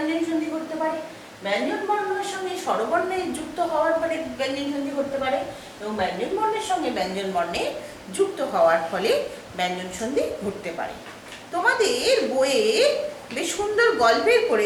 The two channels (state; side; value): identical; both; correlation 1.00